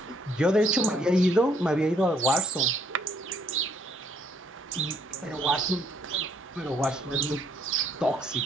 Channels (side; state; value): both; normal; correlation 0.67